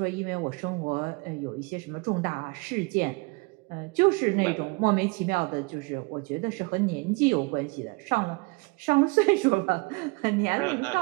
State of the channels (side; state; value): left; quieter; 28.2 dB